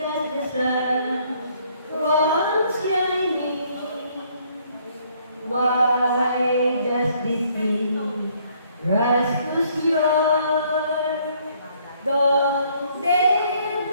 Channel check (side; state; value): both; inverted; correlation -0.65